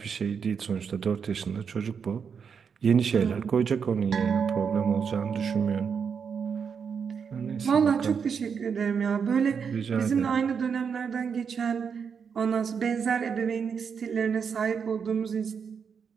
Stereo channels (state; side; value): quieter; left; 6.5 dB